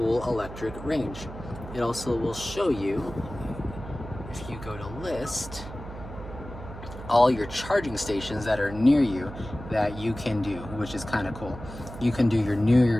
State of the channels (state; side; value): noise; right; hum, 12 dB below the sound